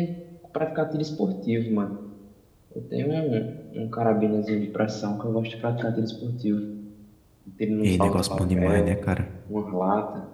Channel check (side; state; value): both; identical; correlation 1.00